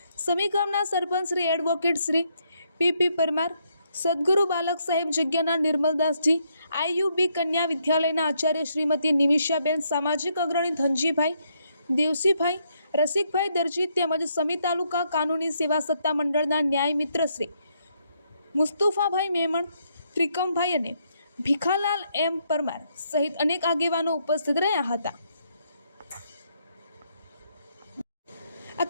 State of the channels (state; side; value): inverted; both; correlation -0.75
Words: સમી ગામના સરપંચ શ્રી એડવોકેટ શ્રી પી પરમાર, સદગુરુ બાલક સાહેબ જગ્યાના નિર્મલદાસજી, આઈયુબી કન્યા વિદ્યાલયના આચાર્ય શ્રીમતી નિમિષાબેન, સામાજિક અગ્રણી ધનજીભાઈ, દેવસીભાઈ, રસિકભાઈ દરજી તેમજ સમી તાલુકા કાનૂની સેવા સત્તા મંડળના ન્યાય મિત્ર શ્રી મુસ્તુફાભાઈ મેમણ, ત્રિકમભાઈ અને ભીખાલાલ એમ પરમાર સહિત અનેક આગેવાનો ઉપસ્થિત રહ્યા હતા। આ